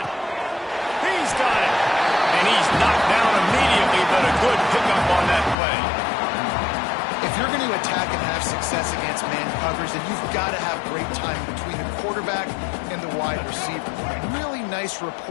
He's got it. And he's knocked down immediately, but a good pickup on that play. If you're going to attack and have success against man covers, then you've got to have great time between the quarterback and the wide receiver. Really nice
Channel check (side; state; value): right; drops out; at 5.6 s